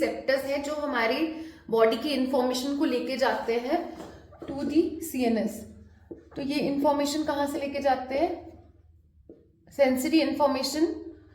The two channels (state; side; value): identical; both; correlation 1.00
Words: हैं जो हमारी बॉडी की इंफॉर्मेशन को लेके जाते हैं टू दी सीएनएस। तो ये इंफॉर्मेशन कहाँ से लेके जाते हैं? सेंसरी इंफॉर्मेशन,